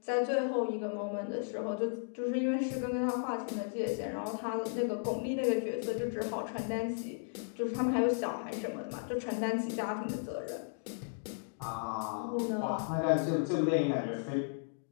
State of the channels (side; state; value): right; silent; digital silence